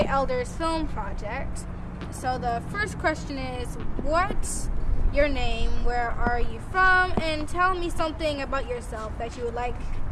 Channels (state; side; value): identical; both; correlation 1.00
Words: Elders Film Project. So the first question is, what's your name, where are you from, and tell me something about yourself that you would like